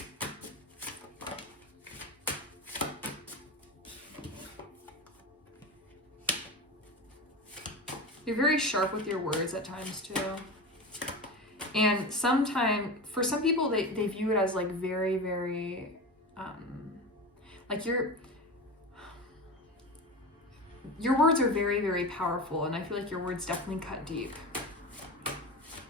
You're very sharp with your words at times too. And for some people, they view it as like very, very, like your words are very, very powerful, and I feel like your words definitely cut deep.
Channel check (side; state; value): both; normal; correlation 0.26